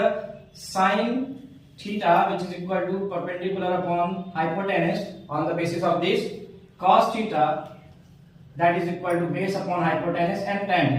sine theta which is equal to perpendicular upon hypotenuse. On the basis of this, cos theta that is equal to base upon hypotenuse, and tan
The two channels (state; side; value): identical; both; correlation 1.00